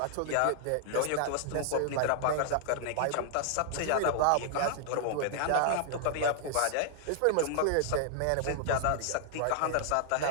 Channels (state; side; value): different; both; correlation -0.01